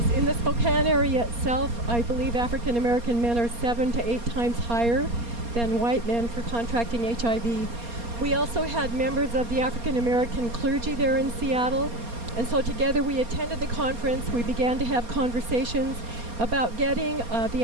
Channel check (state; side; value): late; left; 4.3 ms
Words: In the Spokane area itself, I believe African American men are 7 to 8 times higher than white men for contracting HIV. We also had members of the African American clergy there in Seattle, and so together we attended the conference. We began to have conversations about getting the